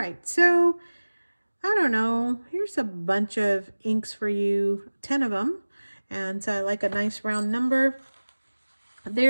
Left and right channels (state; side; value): inverted; both; correlation -1.00